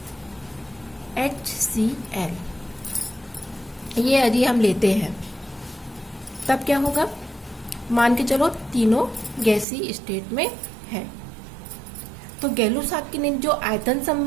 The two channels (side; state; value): left; drops out; at 9.7 s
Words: HCl ये यदि हम लेते हैं तब क्या होगा। मान के चलो तीनों गैसीय स्टेट में है, तो गै-लुसाक ने जो आयतन